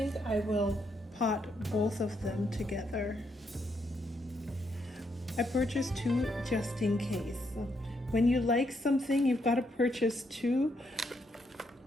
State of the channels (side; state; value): both; normal; correlation 0.77